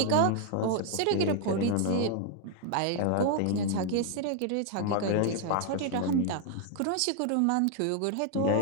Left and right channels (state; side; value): different; both; correlation 0.00